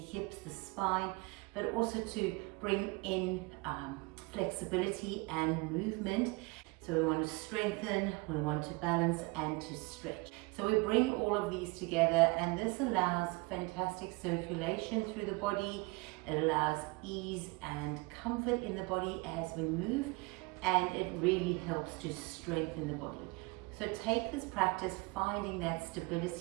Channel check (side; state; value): left; quieter; 25.5 dB